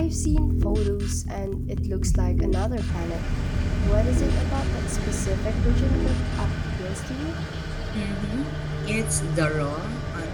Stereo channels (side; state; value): both; identical; correlation 1.00